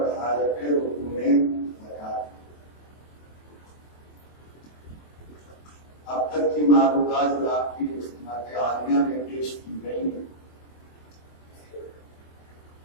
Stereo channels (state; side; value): late; right; 24 ms